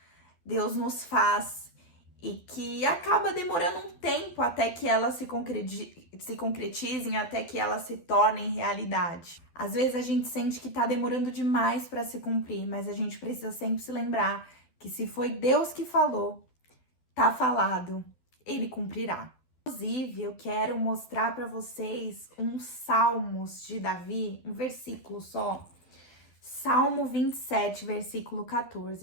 Deus nos faz e que acaba demorando um tempo até que elas se concretizem, até que elas se tornem realidade. Às vezes a gente sente que tá demorando demais para se cumprir, mas a gente precisa sempre se lembrar que se foi Deus que falou, tá falado, ele cumprirá. Inclusive, eu quero mostrar para vocês uns salmos de Davi, um versículo só. Salmo 27, versículo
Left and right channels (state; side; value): late; right; 12 ms